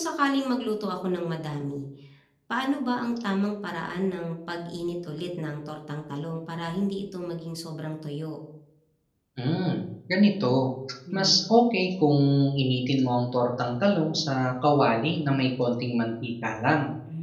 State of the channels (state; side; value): identical; both; correlation 1.00